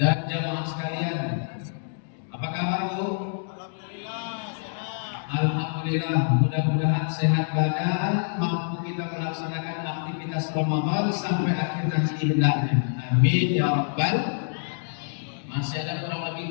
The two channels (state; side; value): silent; right; digital silence